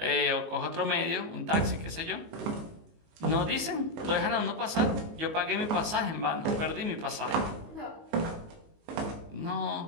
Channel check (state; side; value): late; left; 19 ms